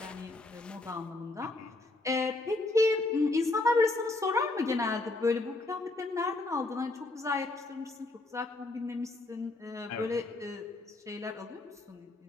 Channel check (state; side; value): quieter; right; 3.0 dB